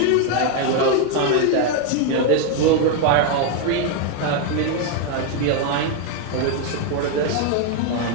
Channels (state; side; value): different; both; correlation 0.01